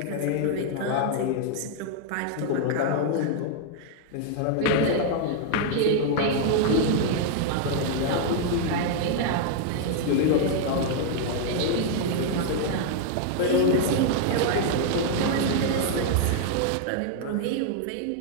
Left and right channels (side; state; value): both; different; correlation 0.00